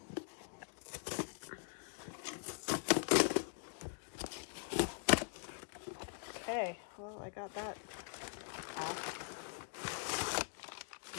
Okay, well, I got that off.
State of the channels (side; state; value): right; silent; digital silence